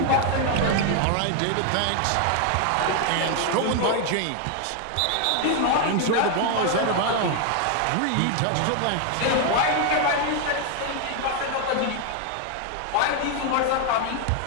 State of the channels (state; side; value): different; both; correlation 0.01